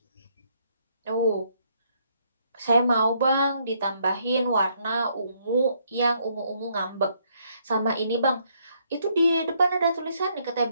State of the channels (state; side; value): inverted; both; correlation -0.71